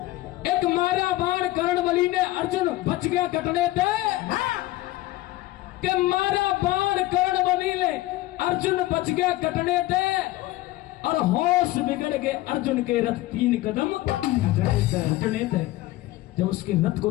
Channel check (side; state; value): right; quieter; 17.5 dB